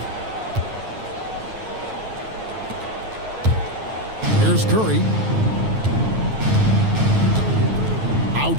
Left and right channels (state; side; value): late; left; 9.2 ms